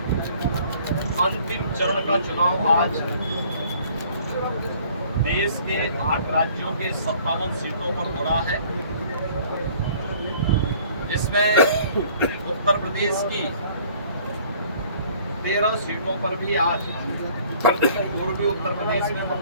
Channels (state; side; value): inverted; both; correlation -0.55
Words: अंतिम चरण का चुनाव आज देश के 8 राज्यों के 57 सीटों पर हो रहा है, जिसमें उत्तर प्रदेश की 13 सीटों पर भी आज पूर्वी उत्तर प्रदेश में